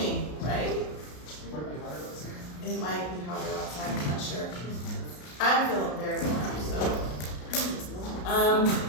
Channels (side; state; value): right; late; 33 ms